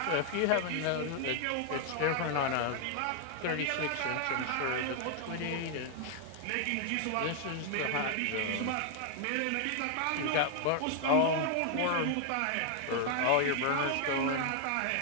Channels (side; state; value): both; different; correlation 0.00